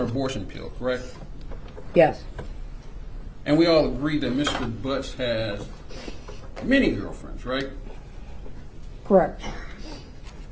abortion pill, correct? Yes. And we all agree that Mr. Butts has many girlfriends, right? Correct.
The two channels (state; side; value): identical; both; correlation 1.00